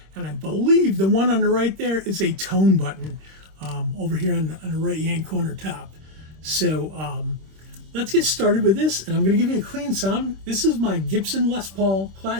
and I believe the one on the right there is a tone button over here on the right-hand corner top. So let's get started with this, and I'm going to give you a clean sound. This is my Gibson Les Paul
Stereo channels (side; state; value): left; late; 26 ms